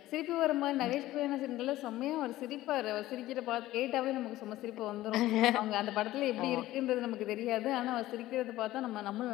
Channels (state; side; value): quieter; right; 15.8 dB